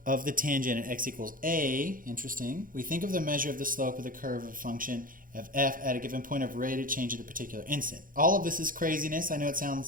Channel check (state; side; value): late; left; 0.40 ms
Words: of the tangent at x equals a, interesting, we think of the measure of the slope of the curve of a function of f at a given point of rate of change at a particular instant. All of this is craziness. I know it